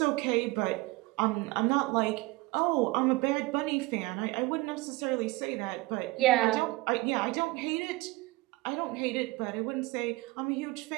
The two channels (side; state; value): left; quieter; 22.0 dB